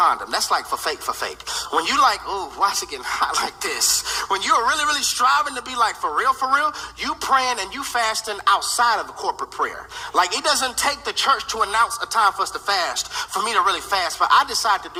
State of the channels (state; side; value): identical; both; correlation 1.00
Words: That's like for fake. When you like, ooh, why is it getting hot like this? When you're really striving to be like for real, you praying and you fasting outside of the corporate prayer. Like, it doesn't take the church to announce a time for us to fast for me to really fast, but I decide to